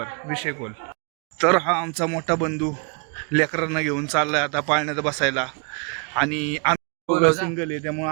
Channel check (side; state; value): left; quieter; 37.0 dB